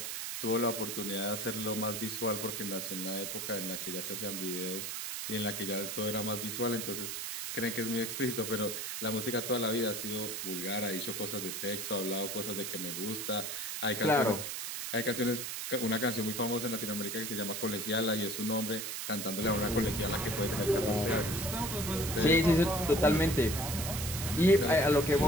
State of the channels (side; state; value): right; noise; hiss, 4 dB below the sound